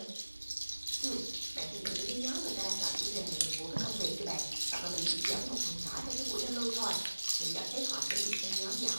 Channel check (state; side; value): inverted; both; correlation -1.00